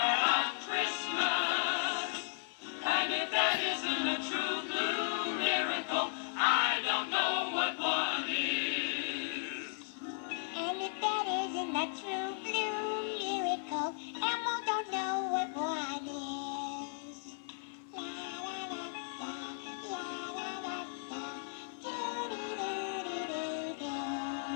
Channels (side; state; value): right; silent; digital silence